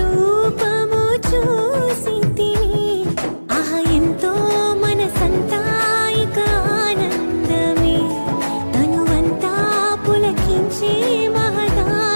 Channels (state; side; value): inverted; both; correlation -1.00